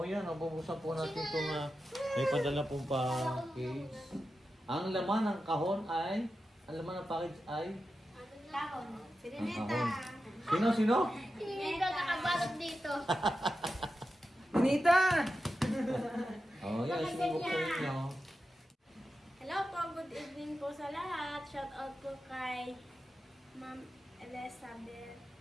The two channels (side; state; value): both; normal; correlation 0.91